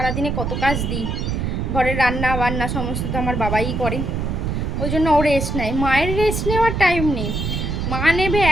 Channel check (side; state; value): right; noise; rumble, 2 dB below the sound